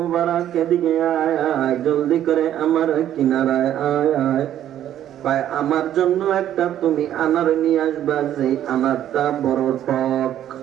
এদিকে আয় আয়, জলদি করে আমার কিনারায় আয় আয়। কয় আমার জন্য একটা তুমি আনার নিয়ে আসবা, যে আনারটা বড় টক।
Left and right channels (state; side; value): quieter; left; 11.3 dB